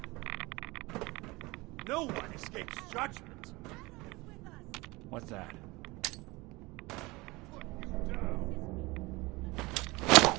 No one escapes judgment. What's that?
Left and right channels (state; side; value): quieter; left; 22.9 dB